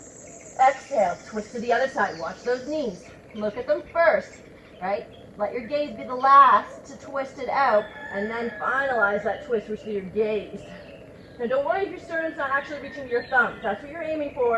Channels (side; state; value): both; identical; correlation 1.00